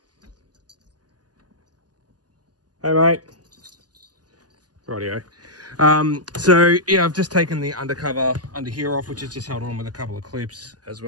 Hey mate. Rightio. So yeah, I've just taken the undercover under here off, which is just held on with a couple of clips, as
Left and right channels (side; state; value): left; late; 0.68 ms